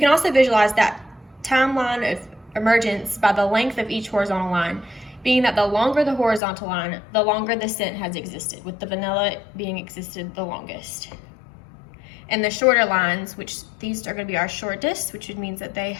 also visualize that timeline of emergence by the length of each horizontal line, being that the longer the horizontal line, the longer the scent has existed, with the vanilla being existed the longest. And the shorter lines, which these are going to be our shortest, which means that they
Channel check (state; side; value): drops out; right; at 6.4 s